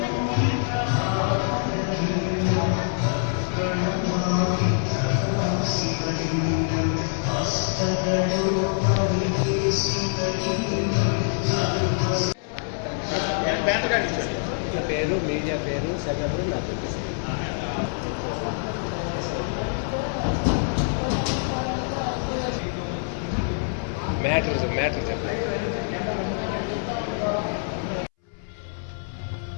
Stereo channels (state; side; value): silent; right; 62 dB below the other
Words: పేరు మీడియా పేరు సెకండరీ నాకు మ్యాటర్ చెప్పండి.